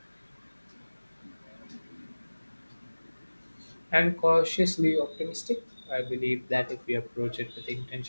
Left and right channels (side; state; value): both; inverted; correlation -1.00